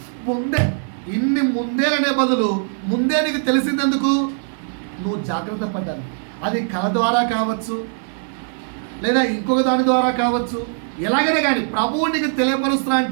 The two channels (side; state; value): left; silent; digital silence